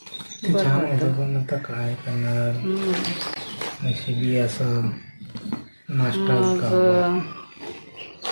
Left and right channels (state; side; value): inverted; both; correlation -1.00